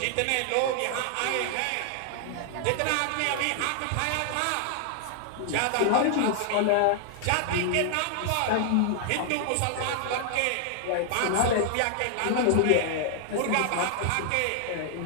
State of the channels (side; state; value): both; different; correlation 0.00